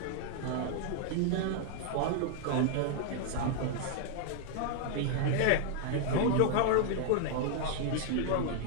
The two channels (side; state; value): both; different; correlation 0.00